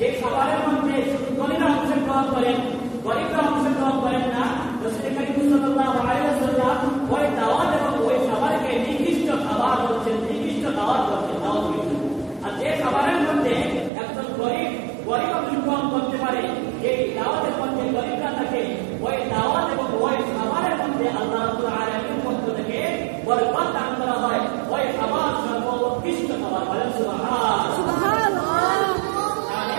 খাবারের মধ্যে শুধু ধনীরা অংশগ্রহণ করেন, গরিবরা অংশগ্রহণ করেন না, রাসূল করিম সাল্লাল্লাহু আলাইহি ওয়াসাল্লাম ওই দাওয়াত এবং ওই খাবারকে নির্দিষ্ট খাবার বলছেন, নির্দিষ্ট দাওয়াত বলছেন, নাউযুবিল্লাহ। আর যে খাবারের মধ্যে একজন গরিব অংশগ্রহণ করতে পারে, যে দাওয়াতের মধ্যে গরিবরা থাকে, ওই দাওয়াত এবং ওই খাবারের মধ্যে আল্লাহ রাব্বুল আলামিনের পক্ষ থেকে বরকত দান করা হয়, ওই খাবার সর্বোৎকৃষ্ট খাবার। বলেন সুবহানাল্লাহ।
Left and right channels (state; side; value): drops out; left; at 13.9 s